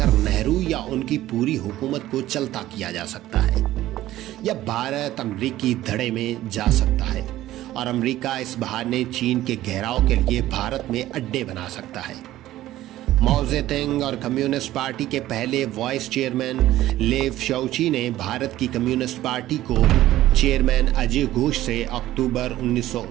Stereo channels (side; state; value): left; quieter; 14.7 dB